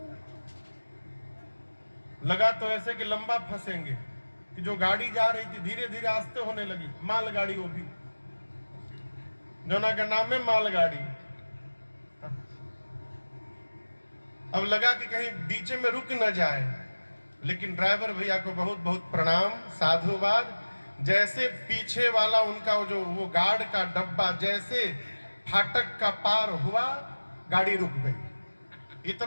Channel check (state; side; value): inverted; both; correlation -1.00